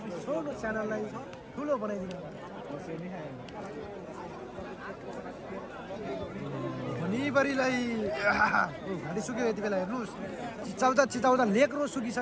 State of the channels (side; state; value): both; identical; correlation 1.00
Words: छोटो च्यानललाई ठुलो बनाइदिनु होला भनिबरीलाई घाँटी सुक्यो यति बेला हेर्नुहोस् चिचाउँदा लेक्रो